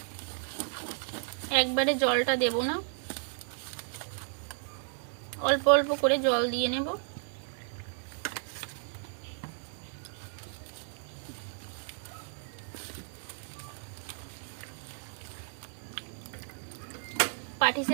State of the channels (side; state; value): left; silent; 56 dB below the other